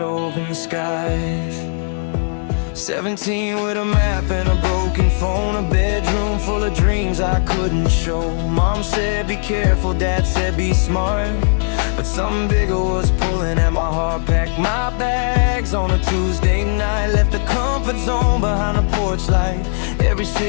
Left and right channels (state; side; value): silent; right; digital silence